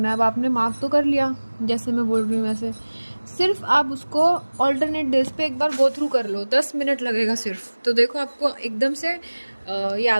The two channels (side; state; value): both; inverted; correlation -1.00